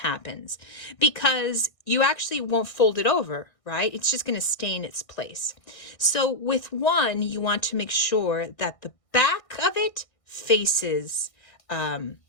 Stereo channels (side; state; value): right; late; 1.6 ms